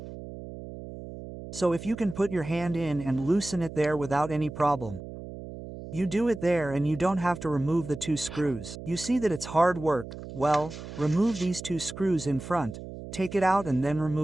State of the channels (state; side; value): noise; right; hum, 12 dB below the sound